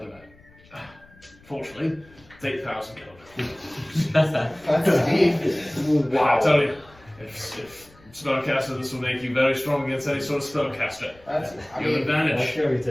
magic. Fortunately, it's 8,000 gold. That's deep. Wow. I tell you, if spellcaster, this will make you very strong against any sort of spellcaster. That's. I You have mean, advantage. sure he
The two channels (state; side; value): noise; left; rumble, 26 dB below the sound